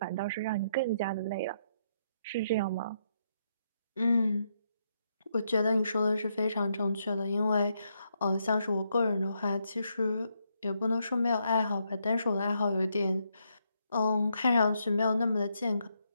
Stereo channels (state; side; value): inverted; both; correlation -0.78